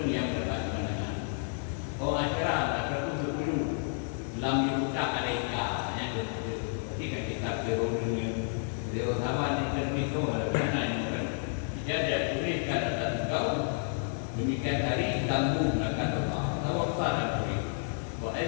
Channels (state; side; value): silent; right; 57 dB below the other